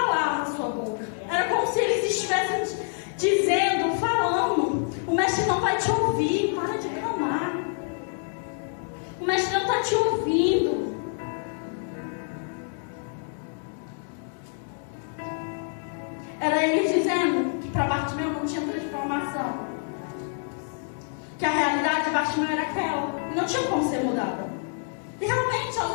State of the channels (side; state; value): right; silent; 60 dB below the other